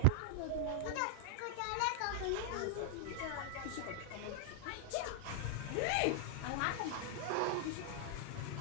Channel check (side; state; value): both; different; correlation -0.01